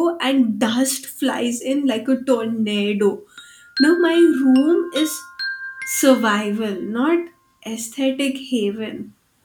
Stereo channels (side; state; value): both; identical; correlation 1.00